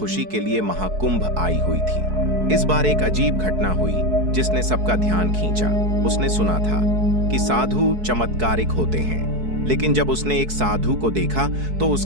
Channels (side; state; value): left; late; 4.6 ms